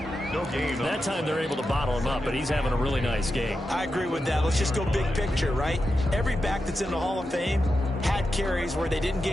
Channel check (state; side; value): normal; both; correlation 0.89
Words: No gain. That time they're able to bottle him up, but he's having a really nice game. I agree with that. Let's just go big picture, right? Every back that's in the Hall of Fame had carries where they didn't